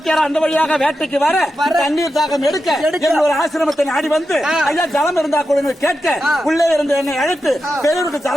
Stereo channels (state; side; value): normal; both; correlation 0.89